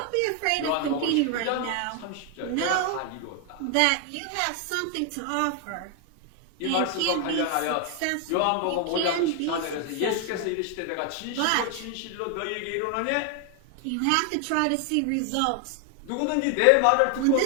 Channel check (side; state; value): both; different; correlation 0.00